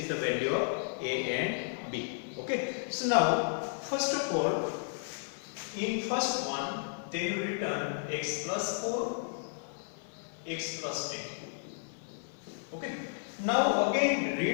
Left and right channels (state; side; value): silent; right; 56 dB below the other